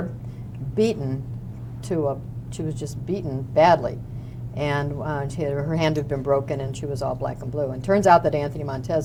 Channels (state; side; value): identical; both; correlation 1.00